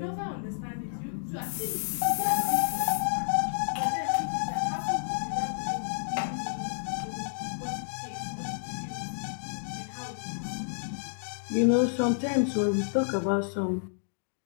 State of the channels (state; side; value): silent; right; digital silence